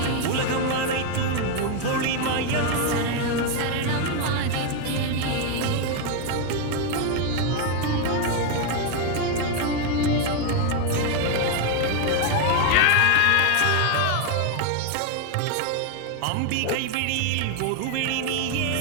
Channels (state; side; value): different; both; correlation 0.01